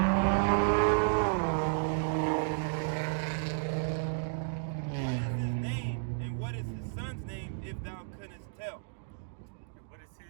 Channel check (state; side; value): silent; left; digital silence